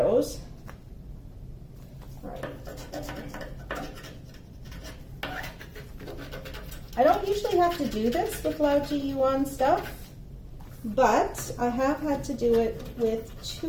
All right. I don't usually have to do this with LaoJieYuan stuff, but I have had to do it with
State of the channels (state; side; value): identical; both; correlation 1.00